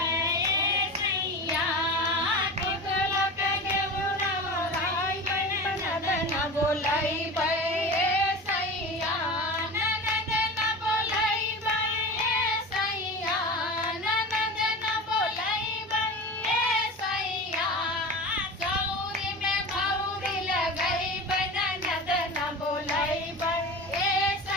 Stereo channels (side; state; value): both; normal; correlation 0.30